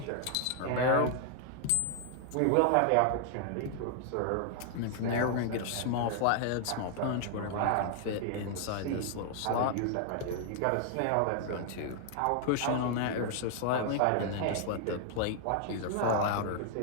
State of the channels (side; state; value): both; different; correlation 0.00